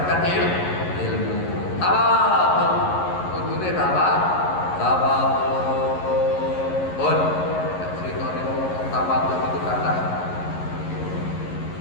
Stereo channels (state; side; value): late; right; 11 ms